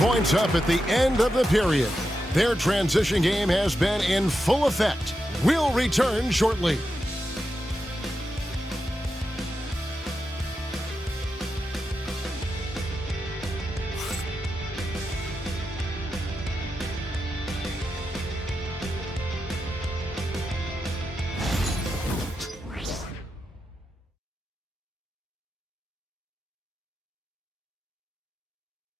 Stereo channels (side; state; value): both; normal; correlation 0.88